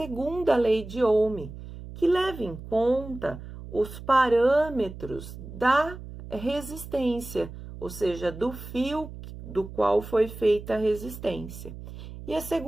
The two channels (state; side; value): noise; right; hum, 13 dB below the sound